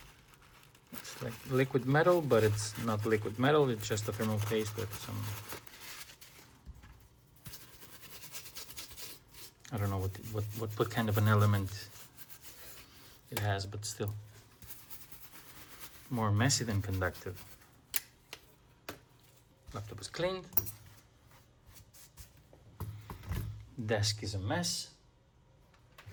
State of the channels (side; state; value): both; identical; correlation 1.00